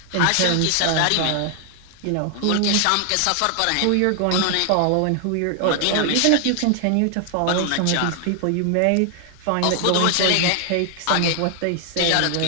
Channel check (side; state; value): both; different; correlation 0.00